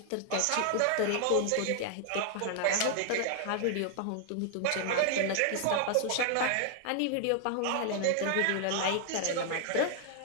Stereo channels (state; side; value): different; both; correlation 0.00